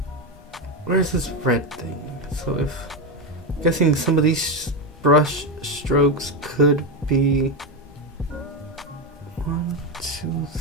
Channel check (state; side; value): normal; both; correlation 0.10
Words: Where's this red thing? So if I'm guessing some of these brush strokes could be 1, 2,